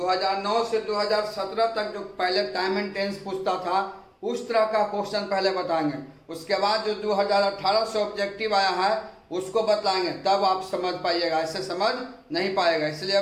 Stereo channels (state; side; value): identical; both; correlation 1.00